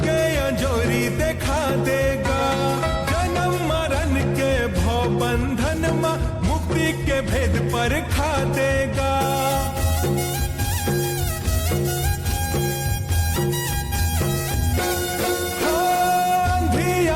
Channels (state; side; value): identical; both; correlation 1.00